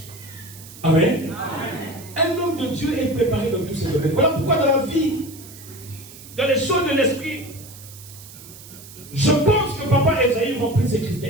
Amen. Un homme de Dieu est préparé dans tous ces domaines. Voilà pourquoi dans la vie, dans les choses de l'esprit, je pense que Papa Esaïe remplit ces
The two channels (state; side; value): noise; right; hiss, 18 dB below the sound